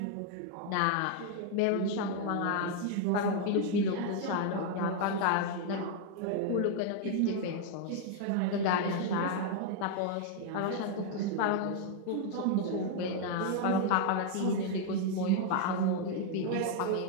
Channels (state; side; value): different; both; correlation 0.00